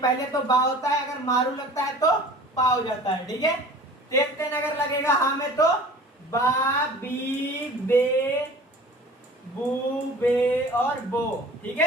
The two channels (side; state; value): both; normal; correlation 0.44